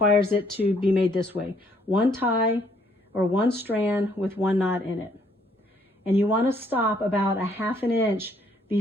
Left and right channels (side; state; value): both; normal; correlation 0.66